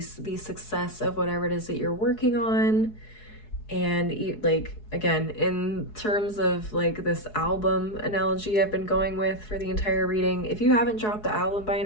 the success of whatever it is that you're working on. And like, again, in terms of like this album analogy I've been going with for the entire reading, if you haven't dropped the album by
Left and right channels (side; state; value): right; late; 4.7 ms